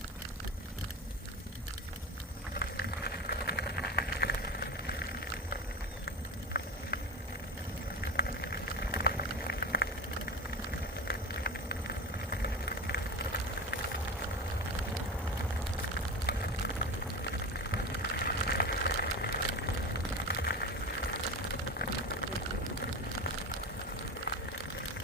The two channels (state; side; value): normal; both; correlation 0.25